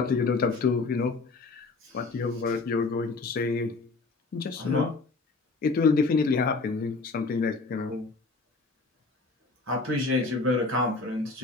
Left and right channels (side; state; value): right; quieter; 3.8 dB